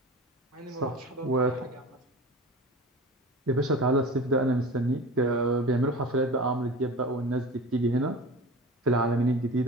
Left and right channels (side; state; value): both; normal; correlation 0.35